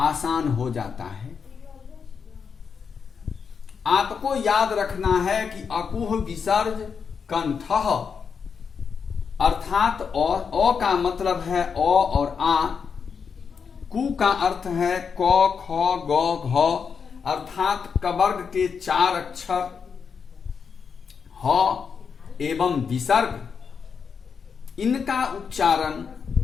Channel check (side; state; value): right; quieter; 6.2 dB